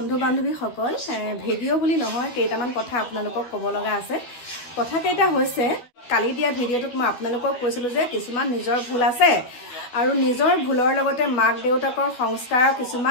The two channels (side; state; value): right; late; 12 ms